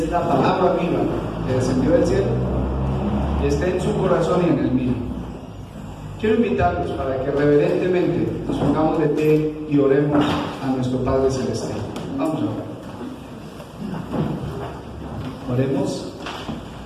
la palabra viva que descendió del cielo, esté en su corazón y en el mío. Quiero invitarlos para que reverentemente nos pongamos de pie y oremos a nuestro Padre Celestial. Vamos a orar. Oremos.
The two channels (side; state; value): both; identical; correlation 1.00